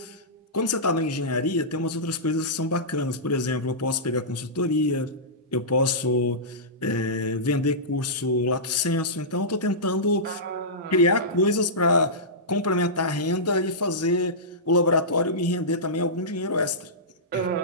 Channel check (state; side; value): normal; both; correlation -0.16